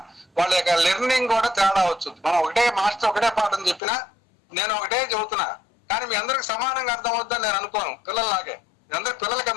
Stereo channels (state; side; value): drops out; right; at 3.8 s